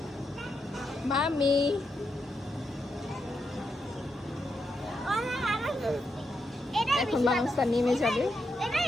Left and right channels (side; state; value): both; normal; correlation 0.83